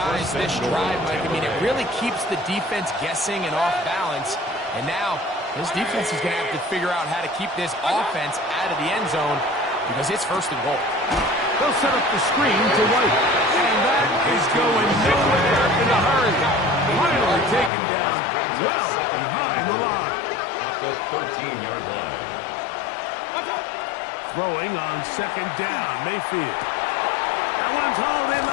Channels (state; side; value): drops out; right; at 17.7 s